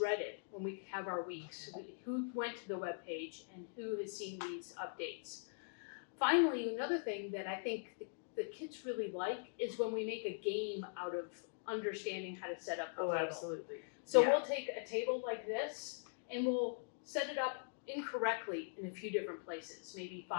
it when we have our weeks, who went to the webpage and who has seen these updates. Finally, another thing that I think the kids really like is when we make a game out of understanding how to set up the table. Absolutely. So we'll take a table like this and we'll set it up incorrectly in a few different places, maybe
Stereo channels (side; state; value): right; silent; digital silence